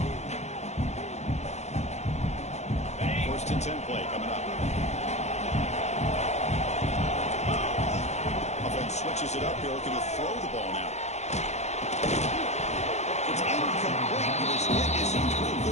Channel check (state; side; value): late; right; 0.33 ms